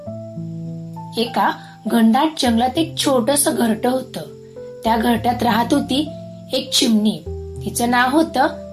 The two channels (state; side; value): identical; both; correlation 1.00